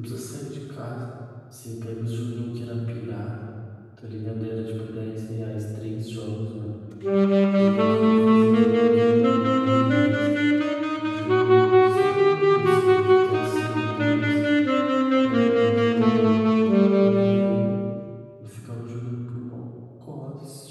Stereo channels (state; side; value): identical; both; correlation 1.00